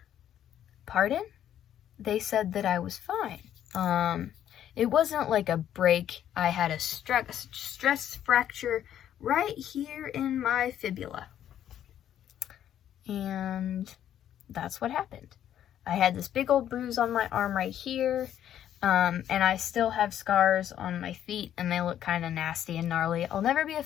pardon? They said that I was fine. It wasn't like a break. I had a stress fracture right here in my fibula. And that's what happened. I had this big old bruise on my arm right here. And I still have scars on my feet, and they look kind of nasty and gnarly. I'll never be a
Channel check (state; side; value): quieter; right; 10.7 dB